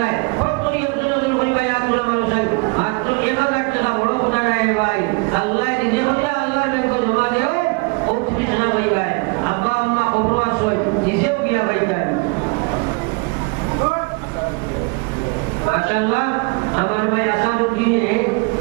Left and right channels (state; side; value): quieter; left; 31.4 dB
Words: নাই ফট করে একজন পরিবার আব্দুল মানুষাই মাত্র 1000 টাকা বড় কথা নাই ভাই আল্লাহ নিজে বলে আল্লাহর ব্যাংক জমা দেও ও তুমি জানা ভাই ভাই আব্বা আম্মা কবর আসয় নিজেও গিয়া ভাই ভাই মাশাআল্লাহ আমার ভাই আসাদুদ্দিনে